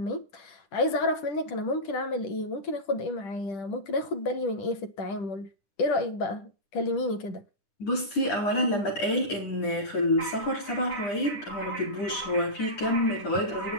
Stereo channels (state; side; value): late; right; 10 ms